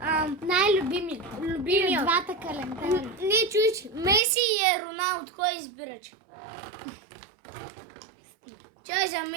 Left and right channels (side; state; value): left; drops out; at 4.2 s